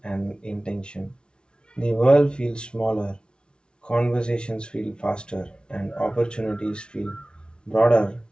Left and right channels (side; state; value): right; late; 0.056 ms